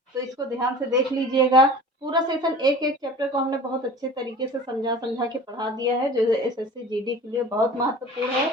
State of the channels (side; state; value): both; normal; correlation 0.40